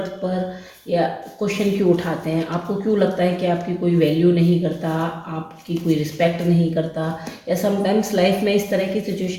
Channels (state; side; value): identical; both; correlation 1.00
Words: पर या क्वेश्चन क्यों उठाते हैं। आपको क्यों लगता है कि आपकी कोई वैल्यू नहीं करता, आपकी कोई रिस्पेक्ट नहीं करता, या समटाइम्स लाइफ में इस तरह की